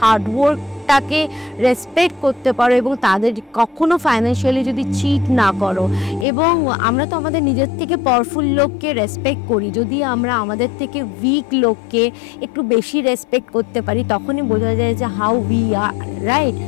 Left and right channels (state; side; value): drops out; right; at 6.2 s